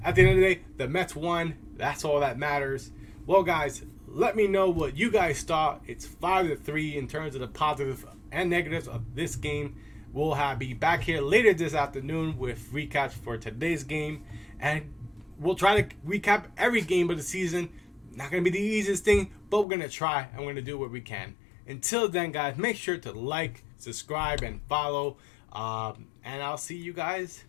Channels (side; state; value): right; drops out; at 19.7 s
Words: at the end of the day, the Mets won. That's all that matters. Well, guys, let me know what you guys thought. It's 5-3 in terms of the positives and negatives of this game. We'll be back here later this afternoon with recaps for today's game. And we'll try to recap every game of the season. Not going to be the easiest thing, but we're going to try and we're going to do what we can. Until then, guys, make sure to like, subscribe, and follow. And I'll see you guys